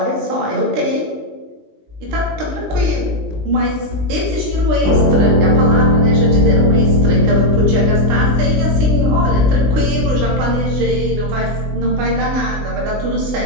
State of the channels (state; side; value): late; left; 20 ms